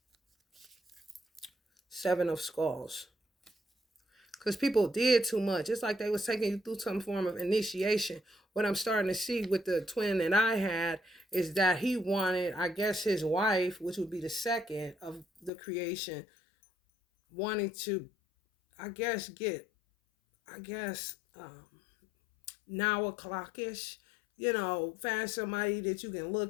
Seven of Skulls. Because people did too much. It's like they was taking you through some form of initiation. What I'm starting to see with the twin that I had is that he wanted, I guess his wife, which would be the second of the creation, wanting to, I guess, now o'clockish, find somebody that you can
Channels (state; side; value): drops out; right; at 15.5 s